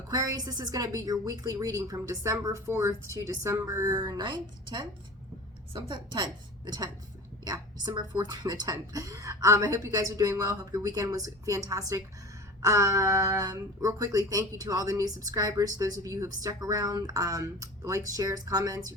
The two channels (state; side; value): normal; both; correlation 0.36